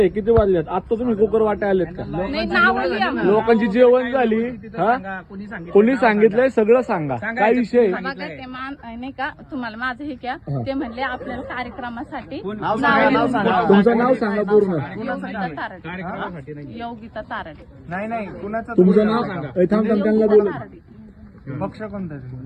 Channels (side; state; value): both; identical; correlation 1.00